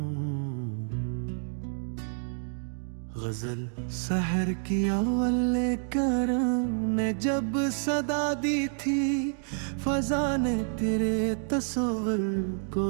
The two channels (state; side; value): silent; left; 59 dB below the other